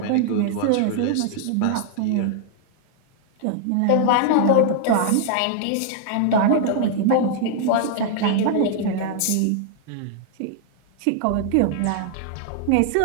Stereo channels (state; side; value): different; both; correlation 0.00